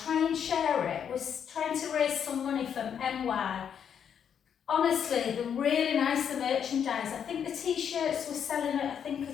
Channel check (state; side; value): quieter; right; 8.1 dB